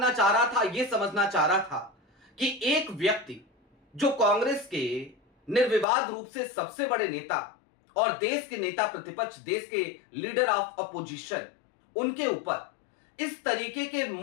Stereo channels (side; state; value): right; drops out; at 5.9 s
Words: चाह रहा था, यह समझना चाह रहा था कि एक व्यक्ति जो कांग्रेस के निर्विवाद रूप से सबसे बड़े नेता और देश के नेता प्रतिपक्ष, देश के लीडर ऑफ अपोजिशन, उनके ऊपर इस तरीके के